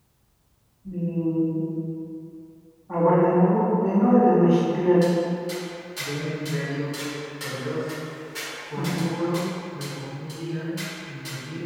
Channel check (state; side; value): identical; both; correlation 1.00